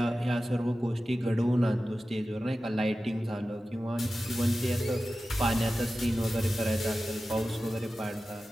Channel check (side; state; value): both; normal; correlation 0.94